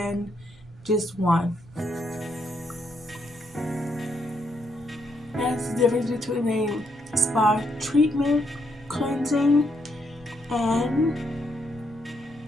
just one. That's the difference between a spa treatment, cleansing, and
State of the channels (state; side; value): noise; right; rumble, 23 dB below the sound